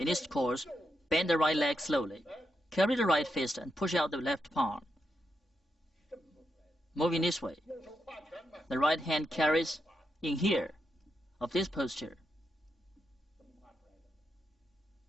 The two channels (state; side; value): normal; both; correlation 0.84